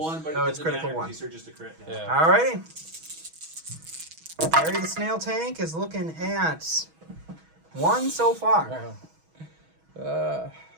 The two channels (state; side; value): late; left; 6.2 ms